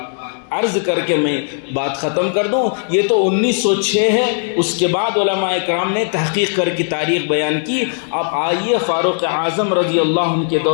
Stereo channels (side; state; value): right; silent; 62 dB below the other